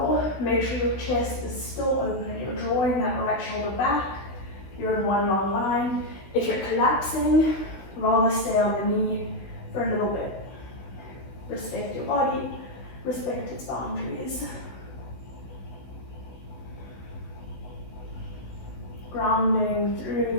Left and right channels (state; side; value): late; right; 16 ms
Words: make sure your chest is still open. You're drawing that right shoulder back. You're in one long line. If you're collapsing, rather stay on the knee for a little bit. Respect your body, respect its boundaries. Grounding through